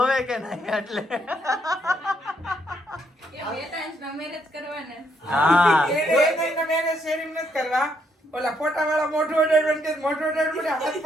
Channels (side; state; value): both; normal; correlation 0.74